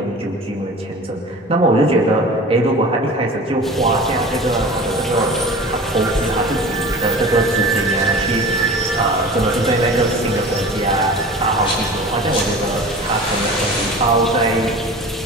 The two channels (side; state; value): both; normal; correlation 0.38